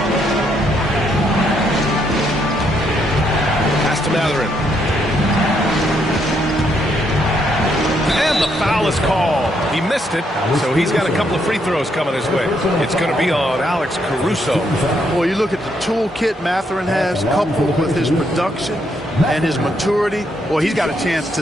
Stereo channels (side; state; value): both; normal; correlation 0.75